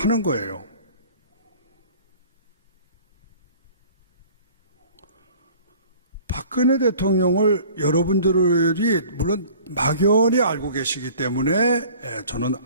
거예요. 박근혜 대통령을 여러분들이 물론 막연히 알고 계시기 때문에 저는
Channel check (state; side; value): inverted; both; correlation -0.48